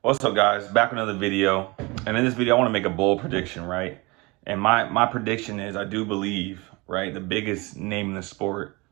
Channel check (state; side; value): quieter; left; 25.1 dB